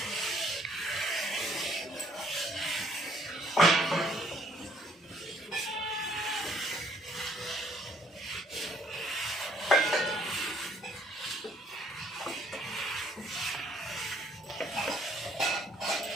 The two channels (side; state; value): both; normal; correlation 0.64